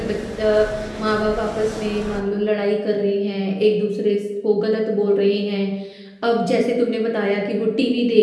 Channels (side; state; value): both; identical; correlation 1.00